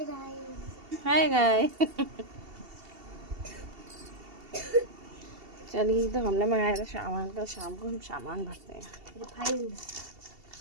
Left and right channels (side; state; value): left; late; 2.7 ms